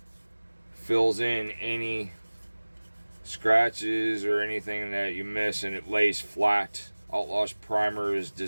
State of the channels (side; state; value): both; inverted; correlation -1.00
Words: fills in any scratches or anything that you miss, and it lays flat. Outlaw's primer is